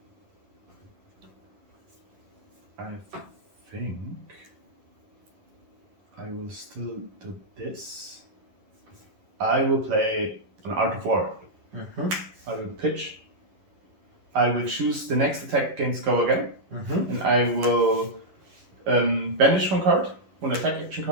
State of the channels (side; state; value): left; late; 11 ms